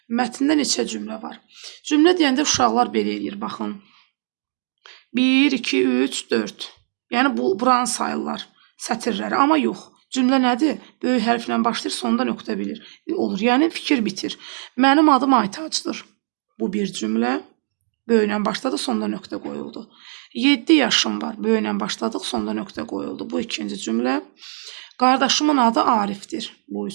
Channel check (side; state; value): left; silent; digital silence